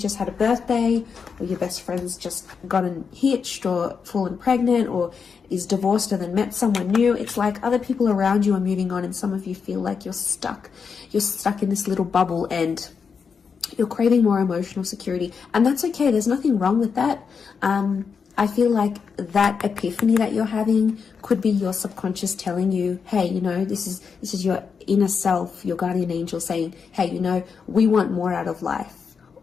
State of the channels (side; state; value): right; quieter; 5.9 dB